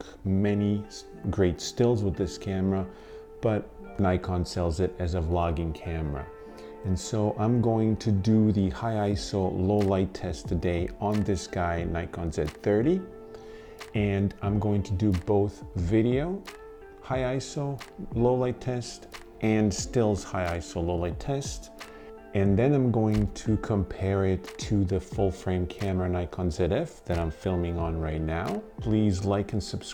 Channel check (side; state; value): both; identical; correlation 1.00